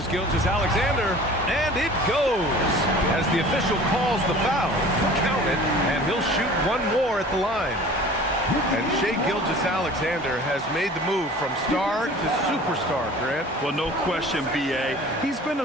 Gilgeous-Alexander, and it goes as the official calls the foul. Count it, and he'll shoot 1 more at the line. And Shai Gilgeous-Alexander has made the move from star to superstar, Grant. Well, no question, B.A. He's been a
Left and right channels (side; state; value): both; normal; correlation 0.44